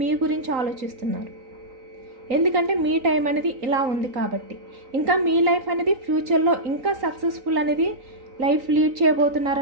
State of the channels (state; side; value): late; left; 3.8 ms